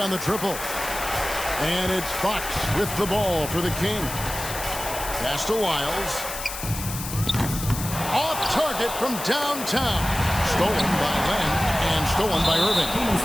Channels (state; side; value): noise; left; hiss, 8 dB below the sound